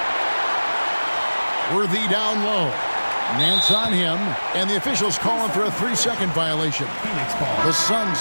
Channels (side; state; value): both; inverted; correlation -1.00